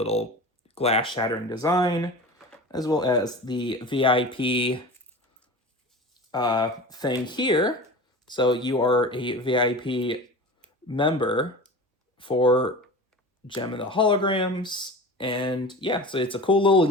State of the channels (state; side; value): normal; both; correlation 0.34